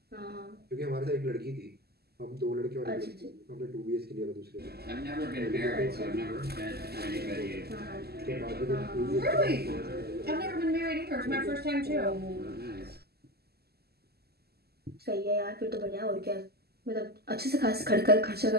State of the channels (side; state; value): left; late; 0.46 ms